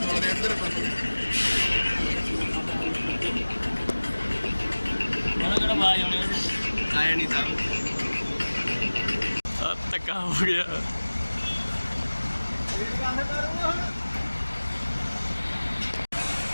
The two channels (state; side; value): inverted; both; correlation -1.00